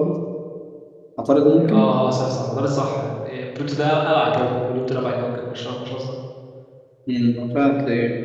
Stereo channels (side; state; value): both; identical; correlation 1.00